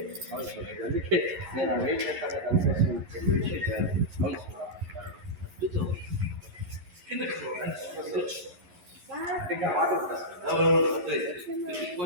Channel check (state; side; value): late; left; 11 ms